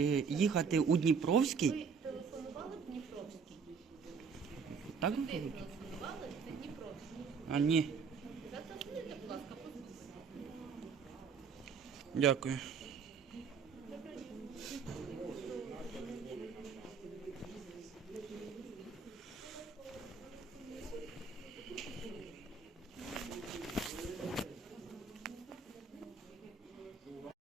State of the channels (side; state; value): left; quieter; 5.6 dB